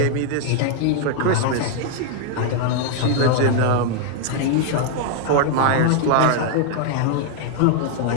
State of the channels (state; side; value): different; both; correlation 0.00